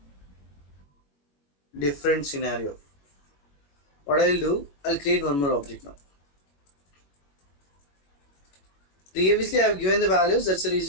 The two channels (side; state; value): right; late; 21 ms